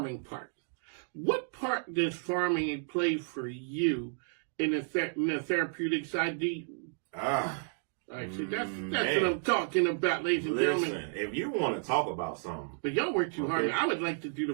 part. What part does farming play for you in the therapeutic side? All right, so that's what I'm talking about, ladies and gentlemen. Listen, if you want to talk about something. But y'all work too hard. I would like to do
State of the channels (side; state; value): left; silent; digital silence